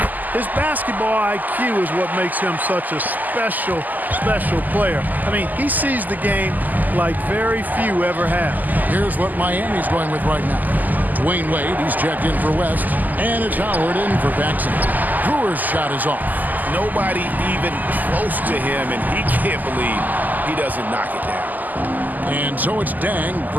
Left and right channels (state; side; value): late; left; 0.083 ms